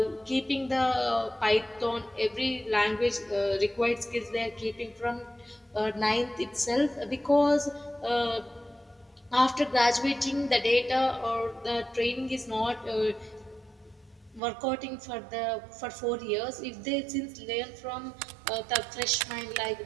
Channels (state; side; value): drops out; left; at 14.4 s